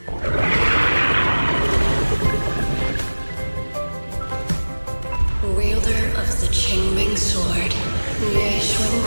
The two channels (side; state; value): both; inverted; correlation -1.00